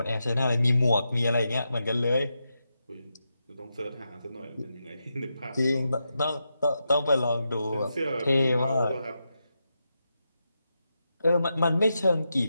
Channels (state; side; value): inverted; both; correlation -0.87